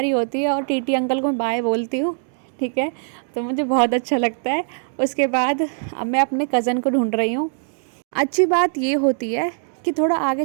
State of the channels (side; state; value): left; silent; digital silence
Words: होती है और टीटी अंकल को मैं बाय बोलती हूँ, ठीक है। तो मुझे बहुत अच्छा लगता है। उसके बाद अब मैं अपने कज़न को ढूंढ रही हूँ। अच्छी बात ये होती है कि थोड़ा आगे